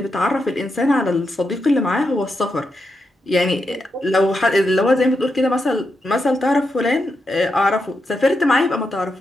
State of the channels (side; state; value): both; normal; correlation 0.85